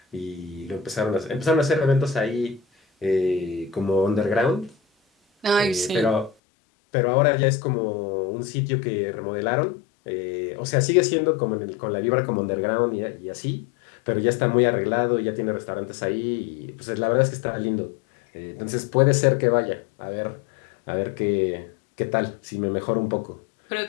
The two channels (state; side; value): drops out; right; at 6.3 s